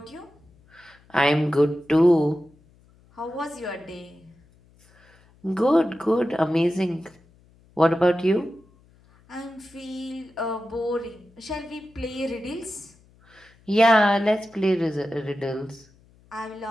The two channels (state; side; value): noise; left; hum, 30 dB below the sound